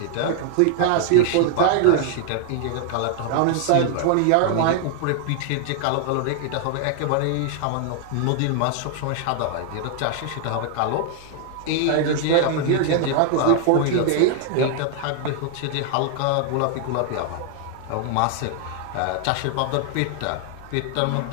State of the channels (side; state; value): both; different; correlation 0.00